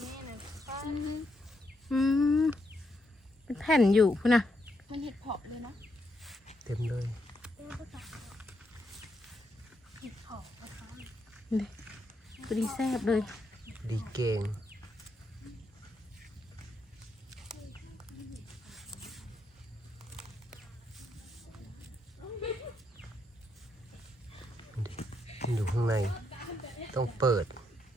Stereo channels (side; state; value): both; normal; correlation 0.80